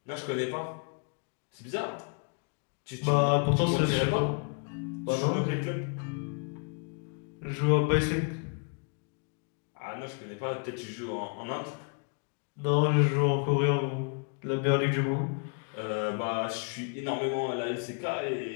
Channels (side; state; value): right; quieter; 39.7 dB